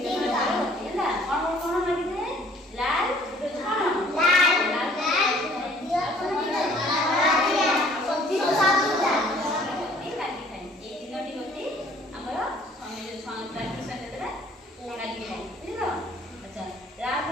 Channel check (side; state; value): both; normal; correlation 0.56